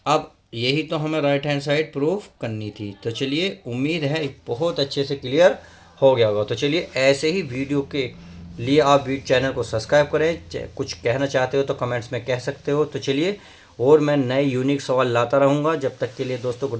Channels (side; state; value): both; identical; correlation 1.00